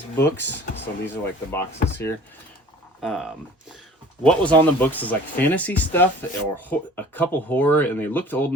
books, so these are like the boxes here. What was on the books is like fantasy stuff or a couple horror, and they looked old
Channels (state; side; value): normal; both; correlation 0.47